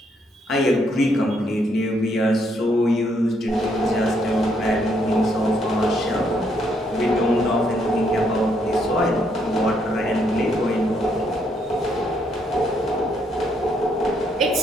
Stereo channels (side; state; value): both; normal; correlation 0.73